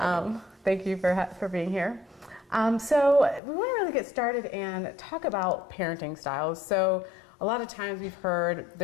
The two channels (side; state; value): right; drops out; at 3.4 s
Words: me. Thank you for being here. So we want to really get started and talk about parenting styles. So a lot of times we've heard